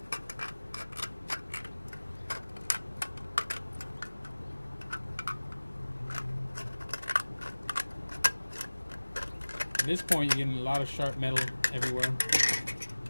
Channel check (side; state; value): both; inverted; correlation -1.00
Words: At this point, you're getting a lot of sharp metal everywhere,